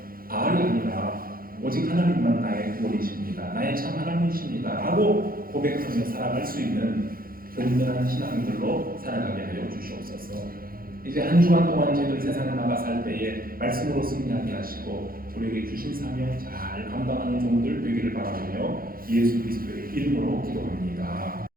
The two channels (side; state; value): left; late; 0.42 ms